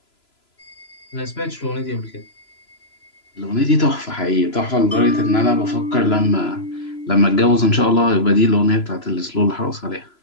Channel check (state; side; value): late; right; 3.0 ms